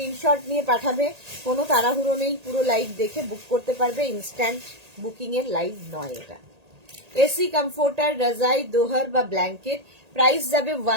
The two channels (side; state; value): left; late; 1.8 ms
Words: নিয়ে পাঠাবে, কোনো তাড়াহুড়ো নেই, পুরো লাইভ দেখে বুক করতে পারবে, ইনস্ট্যান্ট বুকিং এর লাইভ নয় এটা। এসি কমফোর্টার, রাজাই, দোহার বা ব্ল্যাঙ্কেট। প্রাইস যাবে